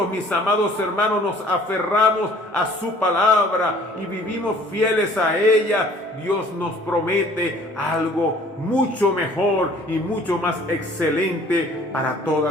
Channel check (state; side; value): normal; both; correlation 0.53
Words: mis amados hermanos, nos aferramos a su palabra y vivimos fieles a ella, Dios nos promete algo mucho mejor y mucho más excelente para toda